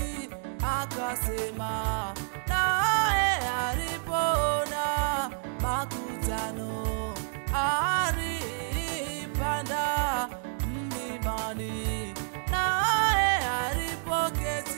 akasema. Naye alipoona makutano alipanda mlimani, naye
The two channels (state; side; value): silent; left; digital silence